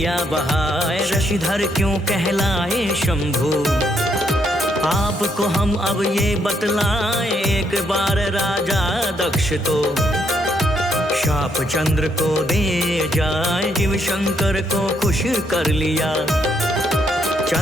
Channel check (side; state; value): both; normal; correlation 0.74